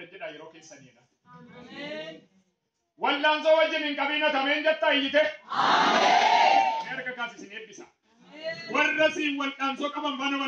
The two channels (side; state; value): both; identical; correlation 1.00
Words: jedha yeroo keessaniidha wallaansoo wajjin hin qabiina tameen jetta iyyite erga kaasisin eebbisa warra siin wallaansoo qaban faana